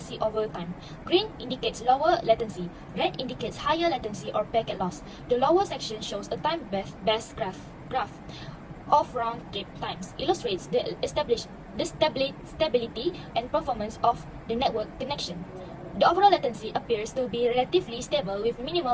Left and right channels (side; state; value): both; identical; correlation 1.00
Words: over time. Green indicates lower latency, red indicates higher latency or packet loss. The lower section shows a time-based graph of round-trip times, illustrates the stability and performance of the network connection. The overall latency appears to be relatively stable with